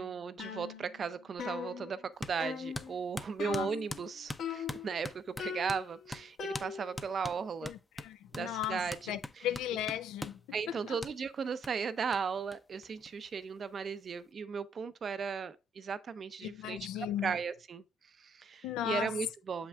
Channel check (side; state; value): both; normal; correlation 0.70